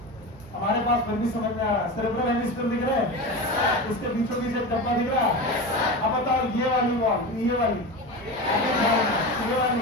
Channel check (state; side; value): normal; both; correlation 0.25